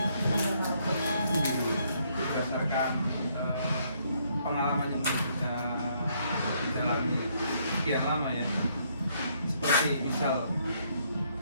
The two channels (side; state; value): both; inverted; correlation -0.70